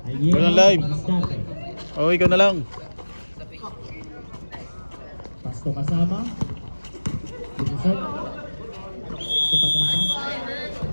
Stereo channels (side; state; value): both; inverted; correlation -1.00